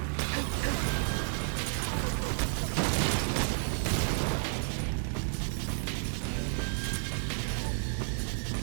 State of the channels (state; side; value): silent; left; 57 dB below the other